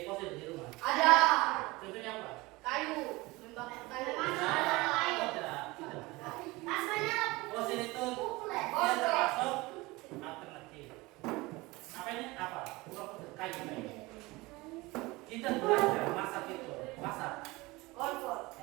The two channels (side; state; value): left; quieter; 22.1 dB